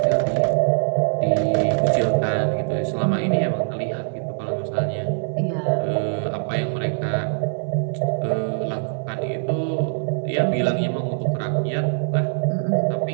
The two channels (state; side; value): silent; left; digital silence